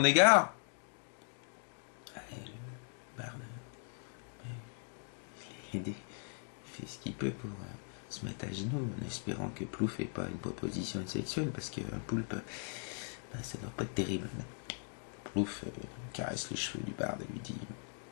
égard? Barde, il fait ce qu'il peut pour se mettre à genoux, en espérant que Plouf n'ait pas une proposition sexuelle, parce qu'un poulpe, ça doit pas être terrible. Plouf caresse les cheveux du barde et lui dit,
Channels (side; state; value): right; silent; 52 dB below the other